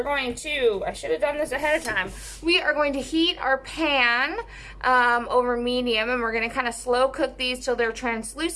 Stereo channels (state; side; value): identical; both; correlation 1.00